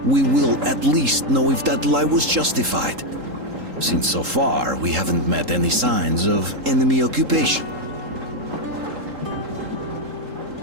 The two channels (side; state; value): left; late; 3.7 ms